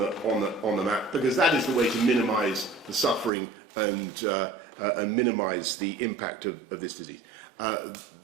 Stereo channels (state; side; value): drops out; left; at 3.3 s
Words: map, because that is the way to minimise the suffering and minimise the impact of this disease.